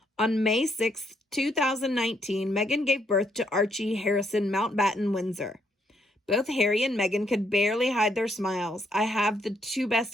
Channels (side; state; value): both; normal; correlation 0.73